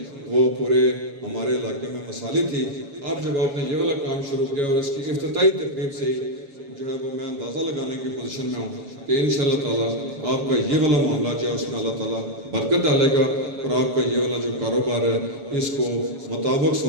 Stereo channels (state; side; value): late; left; 7.2 ms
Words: وہ پورے ہمارے علاقے میں مثالی تھی. اب جب آپ نے یہ والا کام شروع کیا اور اس کی افتتاحی تقریب سے ہی جو ہے وہ میں اندازہ لگانے کی پوزیشن میں ہوں کہ انشاءاللہ تعالیٰ آپ کا یہ والا معاملہ جو ہے اس میں اللہ تعالیٰ برکت ڈالے گا اور آپ کا یہ والا جو کاروبار ہے اس کو مطابق